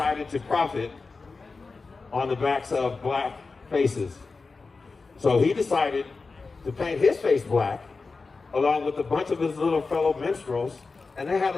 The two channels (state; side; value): quieter; right; 4.1 dB